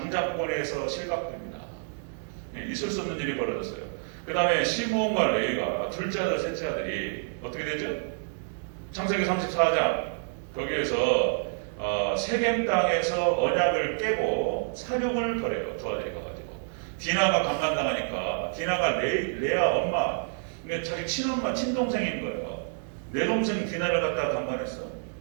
실각됩니다. 있을 수 없는 일이 벌어졌어요. 그 다음에 시므온과 레위가 둘째 아들, 셋째 아들이 어떻게 되죠? 창세기 34장 거기에서 세겜 땅에서 언약을 깨고 사륙을 벌여요. 두 아들이 가가지고 디나가 강간당하니까 디나가 레아 엄마, 그러니까 자기 친엄마, 친동생인 거예요. 내 동생 디나를 갖다가 강간했어.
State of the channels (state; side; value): silent; left; digital silence